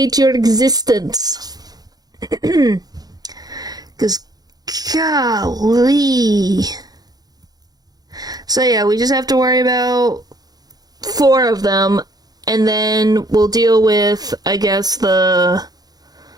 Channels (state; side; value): late; left; 0.19 ms